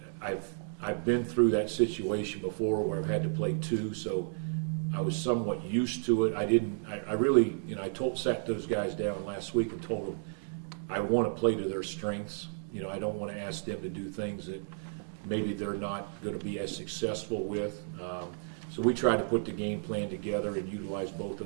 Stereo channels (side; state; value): left; silent; digital silence